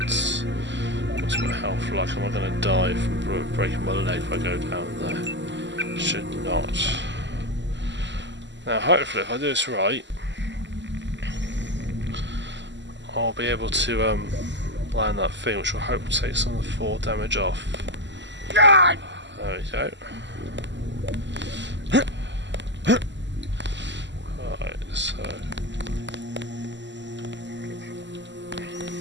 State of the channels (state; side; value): late; left; 0.53 ms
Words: What's my health like? Am I going to die from breaking my leg if I go down there? Should not. Now, hopefully, if I do this right, I'll be able to land that thing, which will hopefully take some of the 4 damage off. There we go. Right, so.